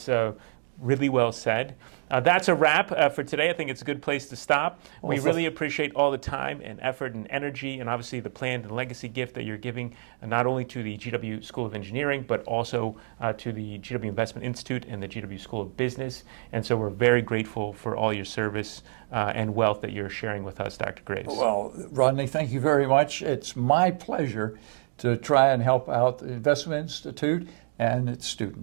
really well said. That's a wrap for today. I think it's a good place to stop. We really appreciate all the time and effort and energy, and obviously the planned and legacy gift that you're giving, not only to the GW School of Engineering, but also to the GW Investment Institute and the GW School of Business. And so we're very grateful for all your service and wealth that you're sharing with us, Dr. Graves. Well, Rodney, thank you very much. It's my pleasure to try and help out the Investment Institute and its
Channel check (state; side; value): silent; left; 60 dB below the other